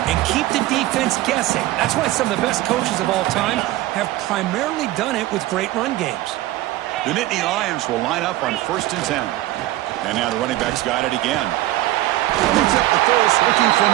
and keep the defense guessing. That's why some of the best coaches of all time have primarily done it with great run games. The Nittany Lions will line up on 1st and 10. And now the running back's got it again. Picks up the first, looking for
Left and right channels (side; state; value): left; quieter; 16.3 dB